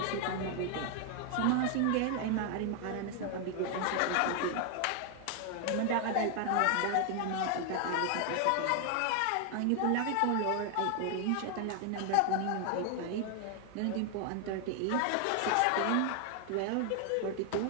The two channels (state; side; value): different; both; correlation 0.00